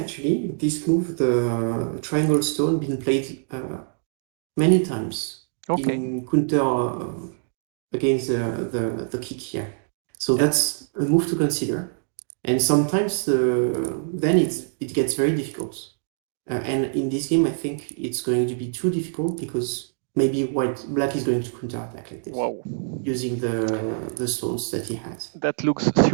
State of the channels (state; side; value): silent; left; digital silence